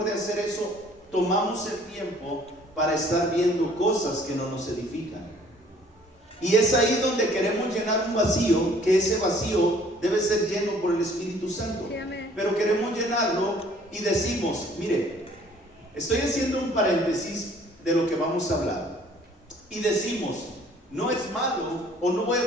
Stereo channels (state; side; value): normal; both; correlation 0.56